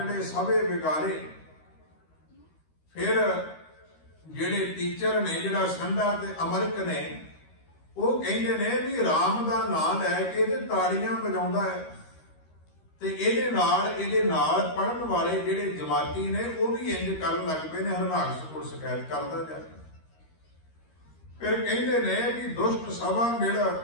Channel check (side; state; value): right; late; 13 ms